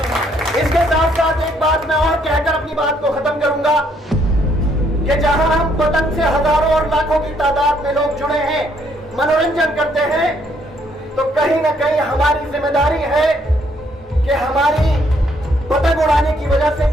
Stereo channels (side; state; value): both; normal; correlation 0.69